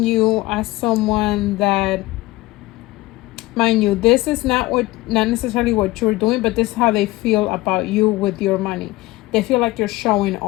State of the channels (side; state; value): right; quieter; 19.5 dB